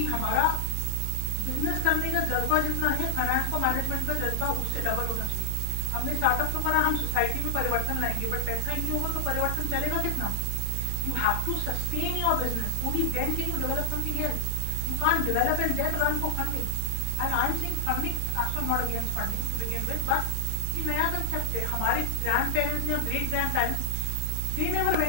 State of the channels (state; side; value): different; both; correlation 0.00